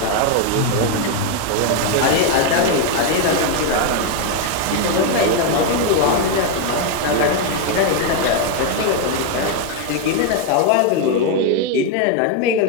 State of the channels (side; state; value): both; different; correlation 0.01